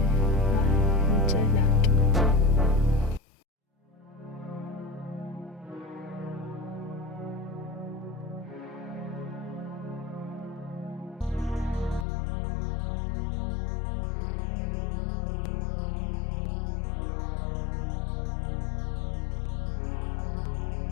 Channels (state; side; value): drops out; right; at 12.1 s